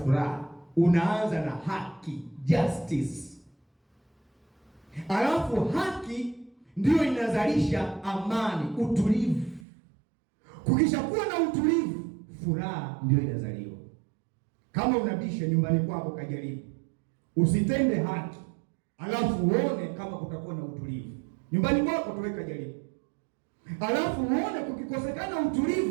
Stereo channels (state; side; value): drops out; left; at 9.7 s